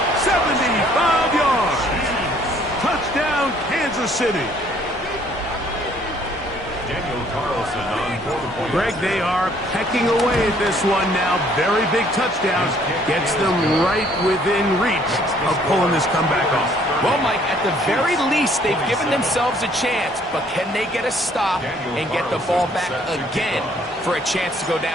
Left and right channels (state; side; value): normal; both; correlation 0.62